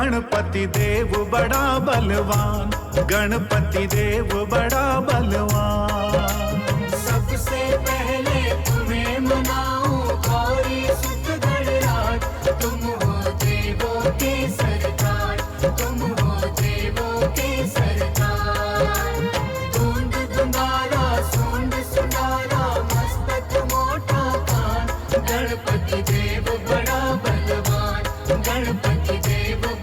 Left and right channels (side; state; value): both; identical; correlation 1.00